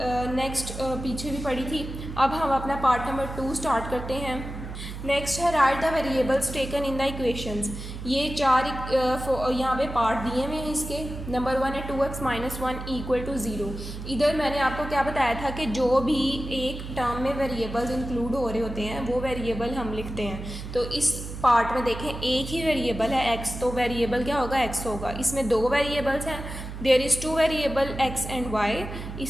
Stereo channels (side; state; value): right; noise; hum, 9 dB below the sound